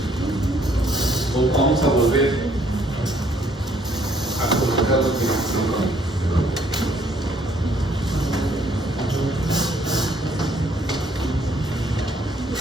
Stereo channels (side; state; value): both; normal; correlation 0.65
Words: O vamos a volver a colocar lo que